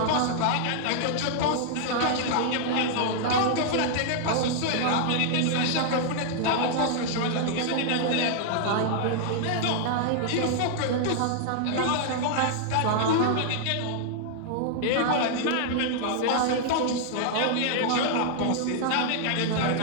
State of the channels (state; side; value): different; both; correlation 0.00